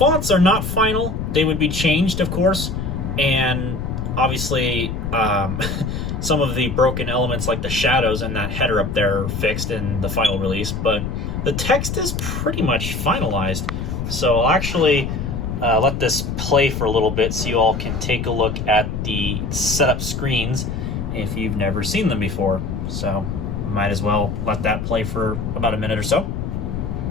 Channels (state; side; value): noise; left; rumble, 4 dB below the sound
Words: are not final, they would be changed of course, and obviously some of the broken elements like the shadows and that header up there are fixed in the final release, but the text is pretty much finalized. So I'll actually let this play for a little bit so you all can take a look at the setup screens if you've never seen them before. So might as well let that play for about a minute or so.